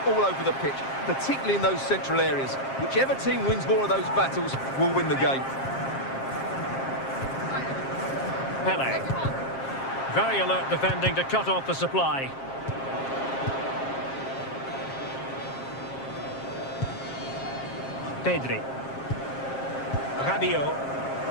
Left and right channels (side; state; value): right; late; 7.5 ms